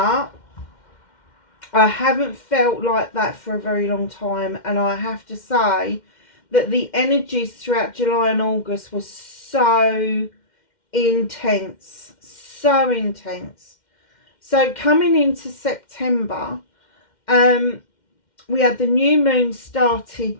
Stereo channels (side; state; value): right; late; 2.1 ms